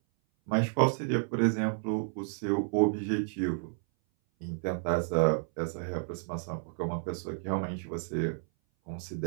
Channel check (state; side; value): silent; left; 57 dB below the other